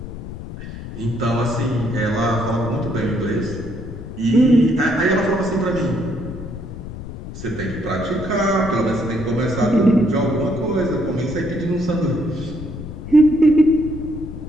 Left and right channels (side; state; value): left; noise; rumble, 10 dB below the sound